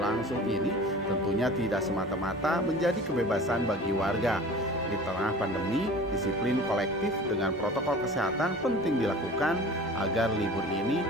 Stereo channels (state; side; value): normal; both; correlation 0.41